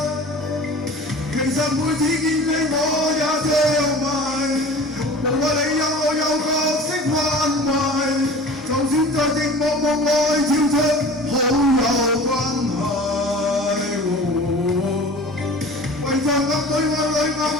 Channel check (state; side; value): normal; both; correlation 0.40